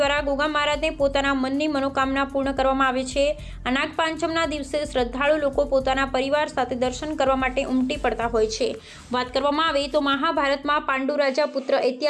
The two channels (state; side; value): identical; both; correlation 1.00